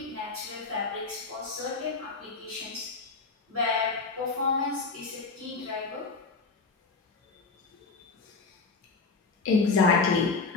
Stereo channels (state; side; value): quieter; right; 4.3 dB